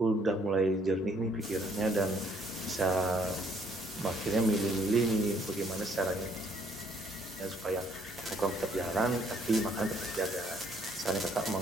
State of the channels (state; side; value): normal; both; correlation 0.66